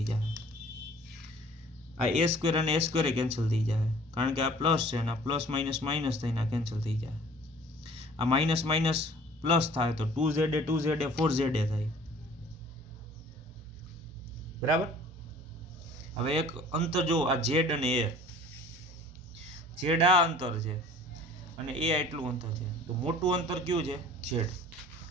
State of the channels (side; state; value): both; normal; correlation 0.50